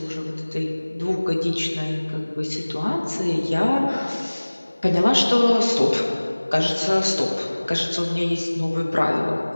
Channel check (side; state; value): both; inverted; correlation -1.00